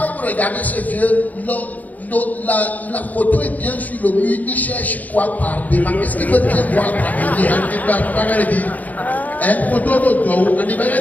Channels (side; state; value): right; late; 0.077 ms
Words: regardez ce vieux, la photo est bien sur le mur, il cherche quoi par devant. Qu'est-ce qu'il veut bien voir par derrière? Il va pas regarder. Hein? Photo de toi, on n'est pas